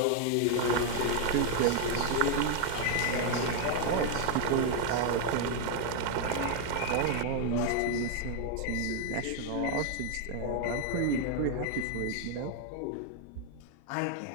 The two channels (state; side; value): different; both; correlation 0.00